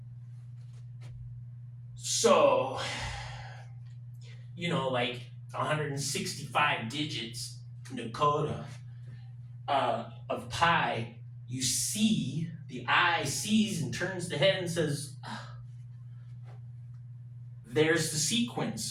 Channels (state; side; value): identical; both; correlation 1.00